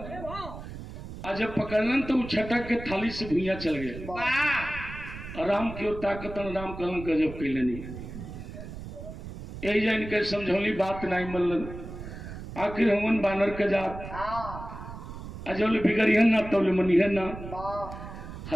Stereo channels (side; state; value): right; noise; rumble, 11 dB below the sound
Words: आज जब पकड़लन तो वो छटक के थाली से भुइया चल गए। राम की ओर ताकत राम कहलन गजब कैलनी यही जान के समझौली बात नहीं मल्लन। आखिर हमन बानर के जात अजौले बिगड़िहन ना तौले मनिहन ना।